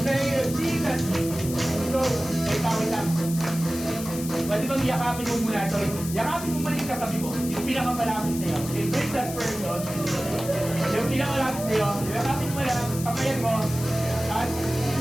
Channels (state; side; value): noise; left; hiss, 10 dB below the sound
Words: Thank you, Jesus. So, may tawid lang. Pwede bang yakapin mo muna? So, yakapin mo muna yung katabi mo. Yung pinakamalapit sa'yo. Embrace that person. Yung pinakamalapit sa'yo. Yakapin mo lang, kamayan mo. At,